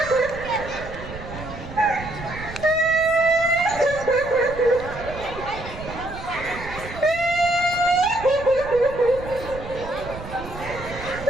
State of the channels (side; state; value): right; noise; rumble, 12 dB below the sound